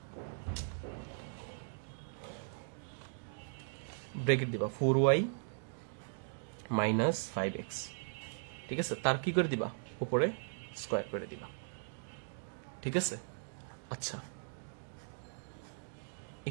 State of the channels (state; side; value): silent; left; digital silence